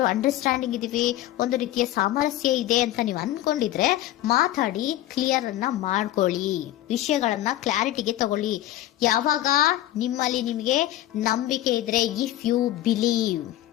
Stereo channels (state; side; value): quieter; right; 14.3 dB